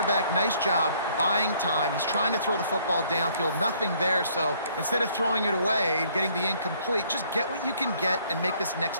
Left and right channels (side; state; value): both; inverted; correlation -0.63